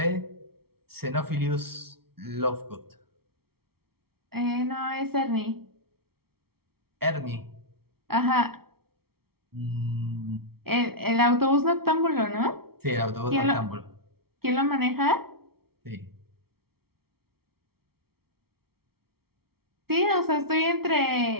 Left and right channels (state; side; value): late; left; 0.95 ms